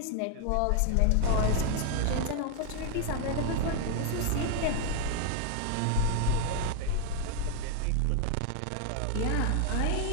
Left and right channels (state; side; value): different; both; correlation 0.01